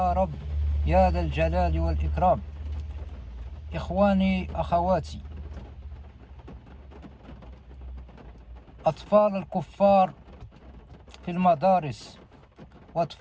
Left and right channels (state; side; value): identical; both; correlation 1.00